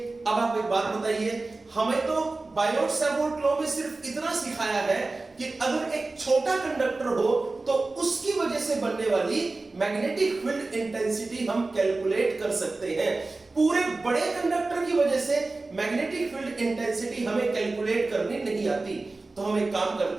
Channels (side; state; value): left; quieter; 3.4 dB